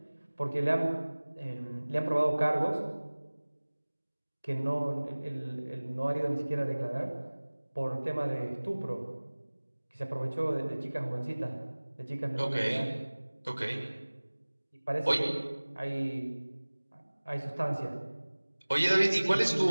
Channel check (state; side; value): inverted; both; correlation -1.00